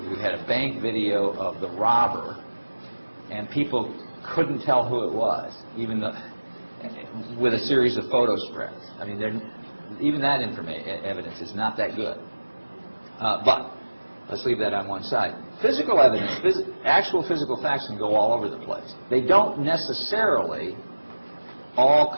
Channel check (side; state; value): both; inverted; correlation -1.00